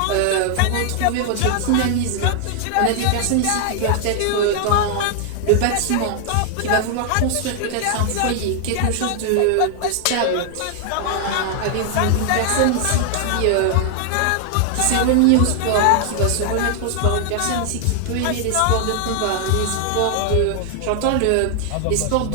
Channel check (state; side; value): different; both; correlation 0.00